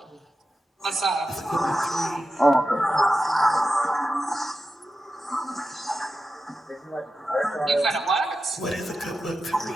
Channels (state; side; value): normal; both; correlation 0.91